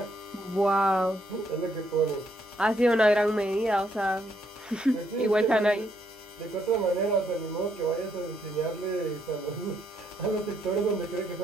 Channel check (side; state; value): both; normal; correlation 0.73